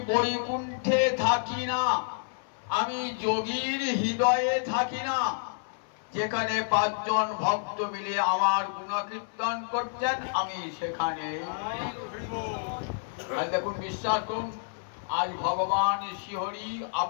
বৈকুণ্ঠে থাকি না আমি যোগীর হৃদয়ে থাকি না যেখানে পাঁচজন ভক্ত মিলে আমার গুণকীর্তন করছেন আমি সেখানে দেখুন বিশ্বাস করুন আজ ভগবান শ্রীহরি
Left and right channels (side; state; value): right; silent; 56 dB below the other